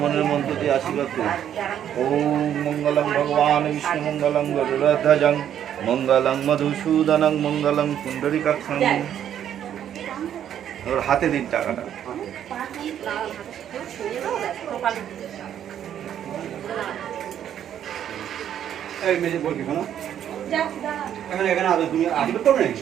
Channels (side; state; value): left; quieter; 10.0 dB